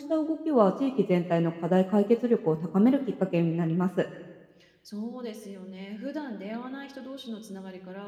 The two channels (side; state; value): both; identical; correlation 1.00